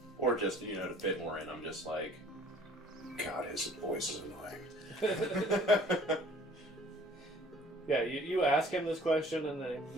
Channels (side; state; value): both; normal; correlation 0.53